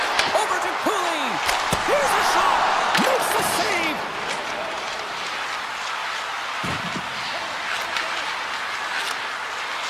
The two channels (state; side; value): identical; both; correlation 1.00